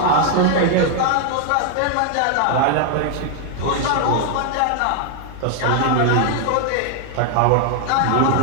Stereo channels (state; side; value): different; both; correlation 0.00